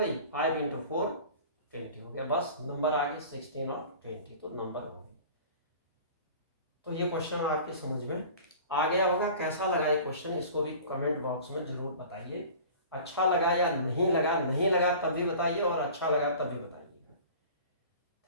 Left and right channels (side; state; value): both; inverted; correlation -0.42